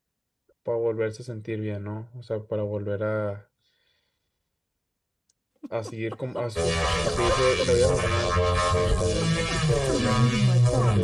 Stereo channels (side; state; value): both; identical; correlation 1.00